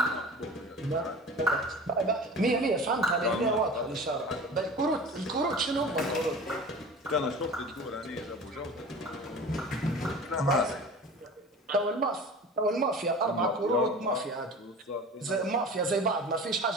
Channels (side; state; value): both; normal; correlation 0.38